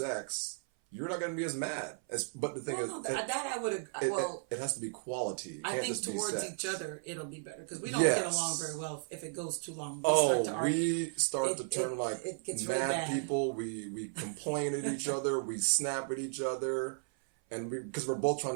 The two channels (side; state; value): left; silent; 55 dB below the other